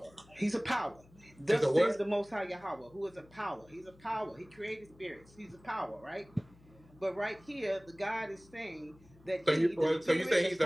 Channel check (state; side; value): noise; left; hum, 26 dB below the sound